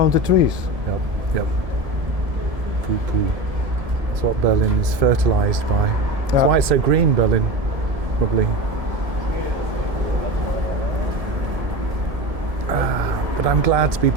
the trees. Yep. Poo. That's what Berlin is fertilised by. That's why it's so green, Berlin, probably. But I'm glad to be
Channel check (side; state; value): left; late; 1.7 ms